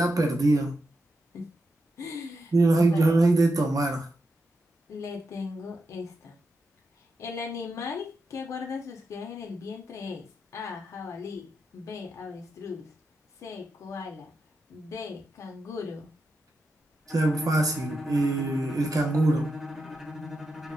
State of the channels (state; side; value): normal; both; correlation 0.87